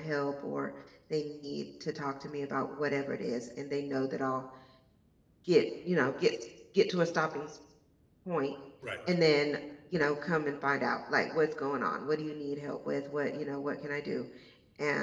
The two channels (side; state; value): both; identical; correlation 1.00